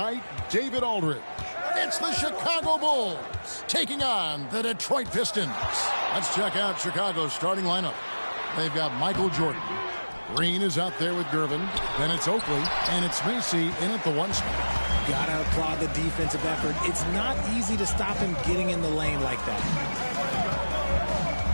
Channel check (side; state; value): both; inverted; correlation -1.00